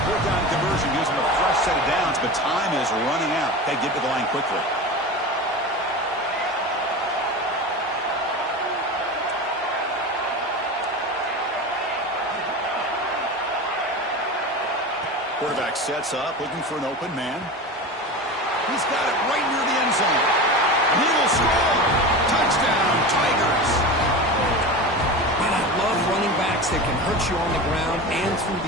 4th down conversion gives him a fresh set of downs, but time is running out. They get to the line quickly. Quarterback sets up, looking for an open man. He's got it right near the end zone. And he will score. Touchdown, Tigers. Man, I love running backs that can hurt you on the ground and through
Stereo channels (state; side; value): normal; both; correlation 0.28